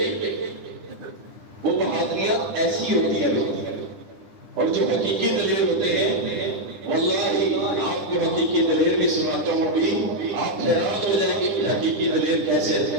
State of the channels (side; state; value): left; late; 10 ms